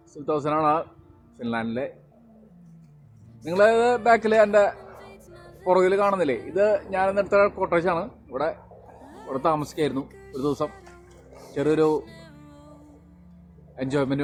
സുൽത്താനാണ് ഫിൻലാൻഡിലെ. നിങ്ങൾ ബാക്കിൽ എൻ്റെ പുറകിൽ കാണുന്നില്ലേ, ഇത് ഞാനിന്നെടുത്ത കോട്ടേജാണ്. ഇവിടെ താമസിക്കായിരുന്നു ഒരു ദിവസം. ചെറിയൊരു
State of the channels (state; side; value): identical; both; correlation 1.00